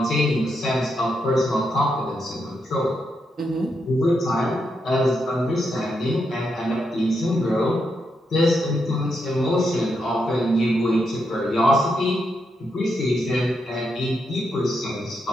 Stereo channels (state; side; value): normal; both; correlation 0.82